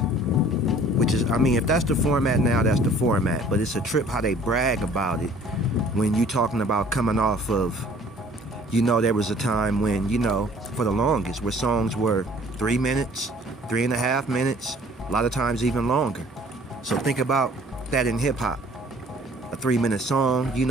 Which is, I mean, if that's the format now, that's the format. But it's a trip how they brag about it when you talking about coming off of, you know, there was a time when, you know, for the longest, where songs were 3 minutes, 3.5 minutes, a lot of times even longer. So think about that in hip hop. A 3-minute song, you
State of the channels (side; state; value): both; normal; correlation 0.53